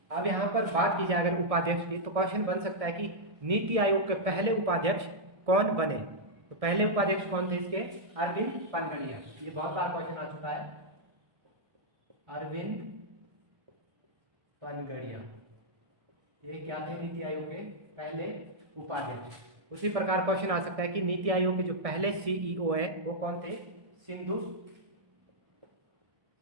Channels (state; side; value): late; left; 1.6 ms